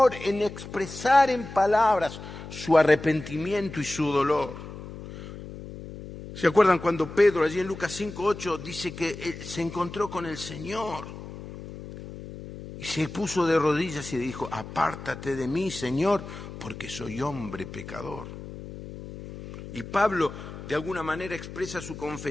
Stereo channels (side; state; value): left; noise; hum, 12 dB below the sound